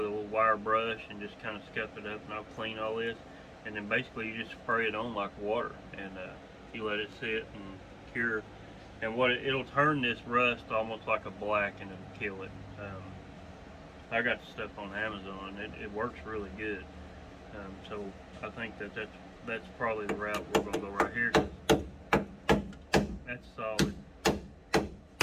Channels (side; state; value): both; identical; correlation 1.00